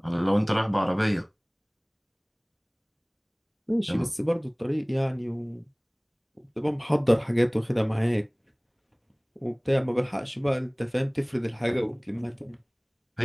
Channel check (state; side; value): identical; both; correlation 1.00